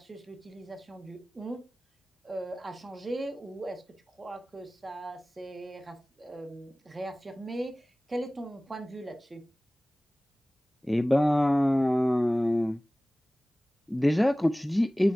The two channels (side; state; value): both; normal; correlation 0.98